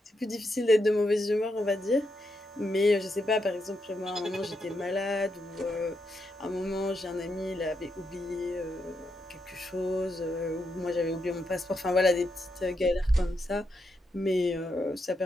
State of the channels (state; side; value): normal; both; correlation 0.82